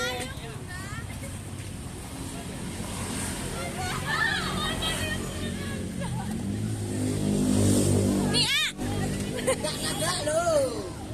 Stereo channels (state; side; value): identical; both; correlation 1.00